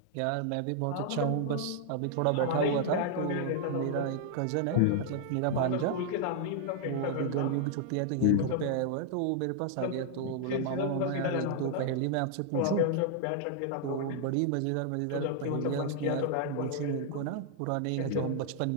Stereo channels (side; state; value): both; different; correlation 0.00